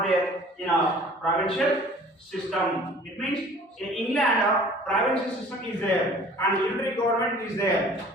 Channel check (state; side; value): normal; both; correlation 0.49